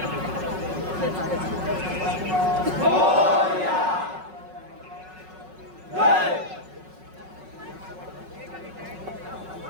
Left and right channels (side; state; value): left; late; 5.4 ms